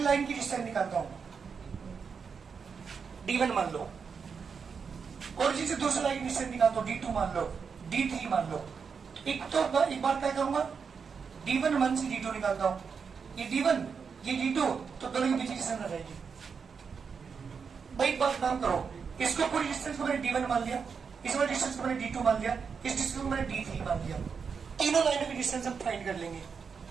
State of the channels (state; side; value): quieter; left; 5.9 dB